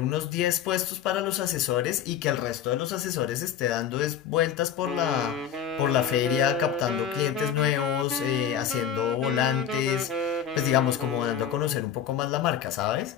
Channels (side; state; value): right; quieter; 8.8 dB